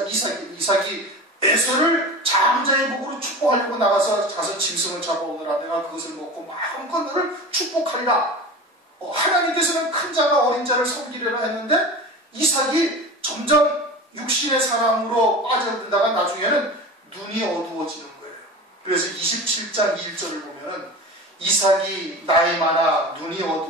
이삭이 에서를 장자의 복으로 축복하려고 나가서 가서 짐승을 잡아오느라 내가 그것을 먹고 마음껏 너를 축복하리라. 하나님께서는 큰 자가 어린 자를 섬기려라 했는데 이삭이 점점 육신의 사랑으로 빠져든다가 나중에는 눈이 어두워지는 거예요. 그래서 27장 1절을 보면은 이삭이 나이 많아 눈이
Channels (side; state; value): both; normal; correlation 0.32